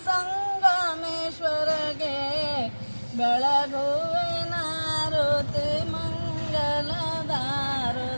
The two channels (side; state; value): both; inverted; correlation -1.00